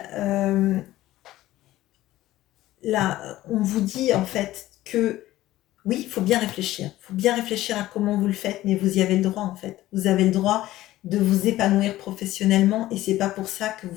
là, on vous dit en fait que oui, il faut bien réfléchir. Il faut bien réfléchir à comment vous le faites, mais vous y avez le droit en fait. Vous avez le droit de vous épanouir professionnellement et c'est pas pour ça que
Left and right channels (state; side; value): quieter; right; 15.6 dB